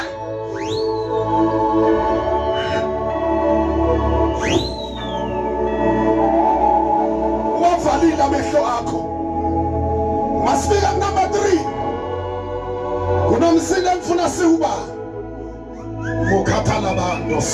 wavalile amehlo akho. Masifika number 3. Kunomsindo engifuna siwuba mukhathala bantu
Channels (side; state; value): both; identical; correlation 1.00